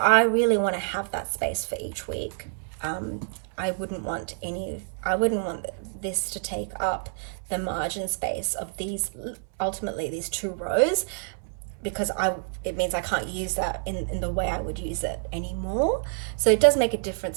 really want to have that space for each week. I wouldn't want this to take up the margin space of ultimately these 2 rows, because it means I can't use that in the way I would use it anymore. So it does make a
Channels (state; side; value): silent; left; 60 dB below the other